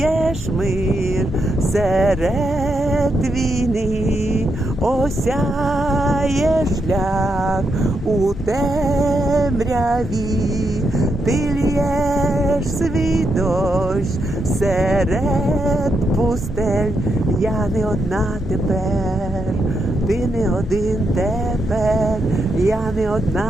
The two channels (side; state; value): both; normal; correlation 0.82